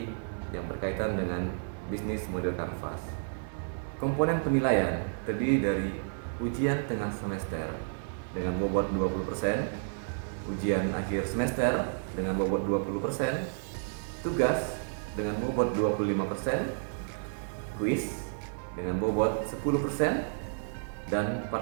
yang berkaitan dengan bisnis model kanvas. Komponen penilaian terdiri dari ujian tengah semester dengan bobot 20%, ujian akhir semester dengan bobot 20%, tugas dengan bobot 25%, kuis dengan bobot 10%, dan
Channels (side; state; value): left; silent; digital silence